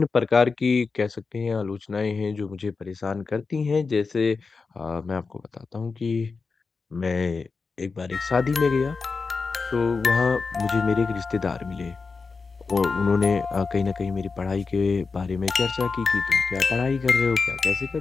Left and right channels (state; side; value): quieter; right; 4.5 dB